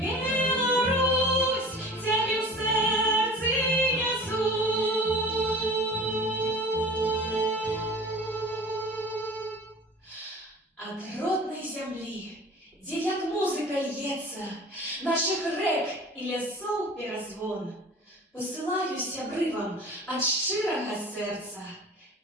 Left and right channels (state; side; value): normal; both; correlation 0.41